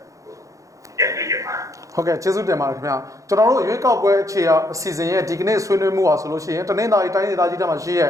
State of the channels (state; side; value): late; left; 0.16 ms